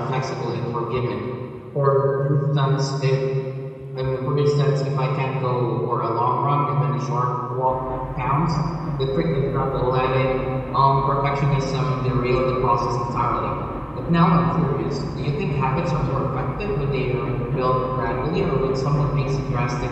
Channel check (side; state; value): both; identical; correlation 1.00